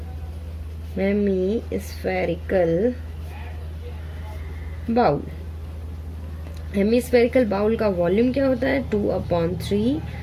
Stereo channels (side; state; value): both; identical; correlation 1.00